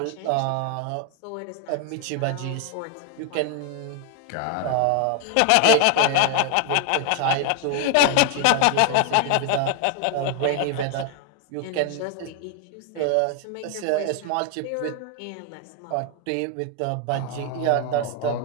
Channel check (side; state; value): both; different; correlation 0.01